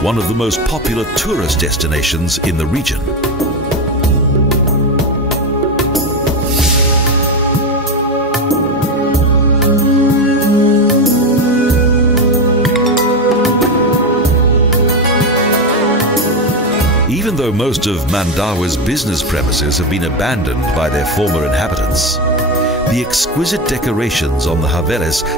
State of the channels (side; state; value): both; normal; correlation 0.14